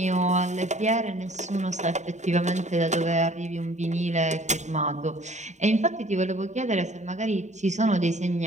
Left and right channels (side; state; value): left; late; 0.34 ms